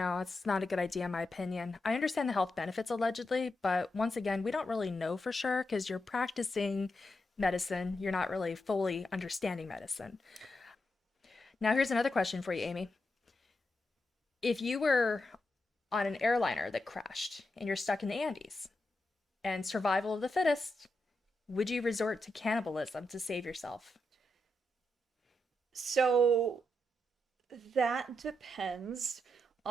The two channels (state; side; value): normal; both; correlation 0.85